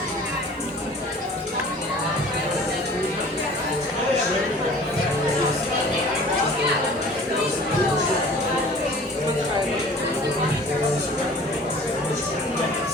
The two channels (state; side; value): normal; both; correlation 0.46